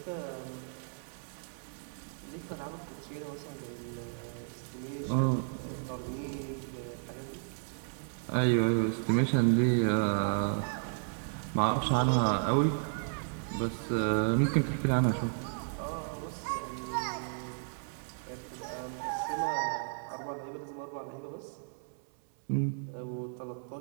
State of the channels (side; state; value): left; silent; 55 dB below the other